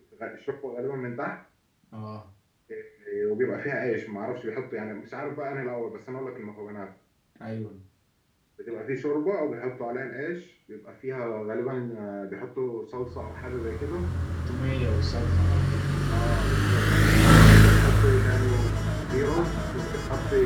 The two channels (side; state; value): both; identical; correlation 1.00